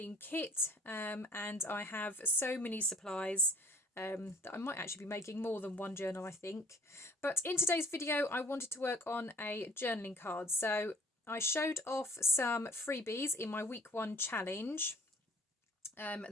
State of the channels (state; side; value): normal; both; correlation 0.52